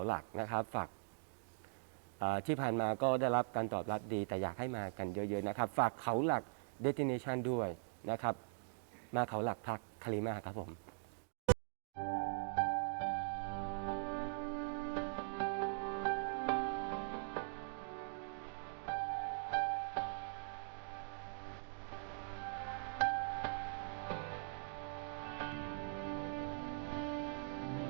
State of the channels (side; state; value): left; silent; digital silence